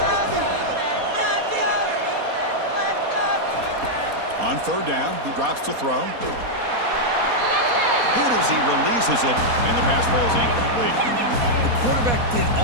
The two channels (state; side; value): late; left; 4.2 ms